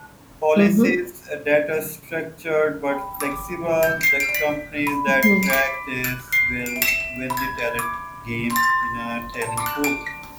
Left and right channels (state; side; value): identical; both; correlation 1.00